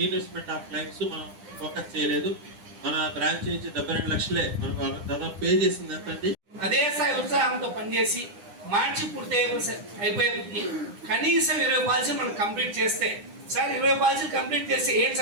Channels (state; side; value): late; left; 9.9 ms